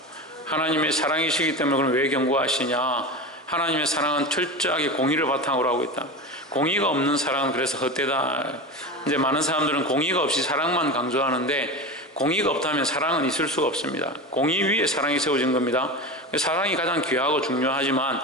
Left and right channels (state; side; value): normal; both; correlation 0.25